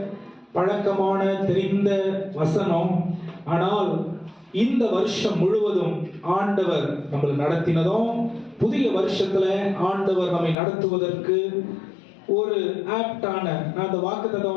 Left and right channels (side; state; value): right; drops out; at 10.6 s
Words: பழக்கமான தெரிந்த வசனம். ஆனால் இந்த வருஷம் முழுவதும் ஆண்டவர் நம்மளை நடத்தினதும், புதிய வருஷத்துல ஆண்டவர் நம்மை நடத்துவதற்கு ஒரு ஆப்டான, நான் அந்த வாக்குத்தத்த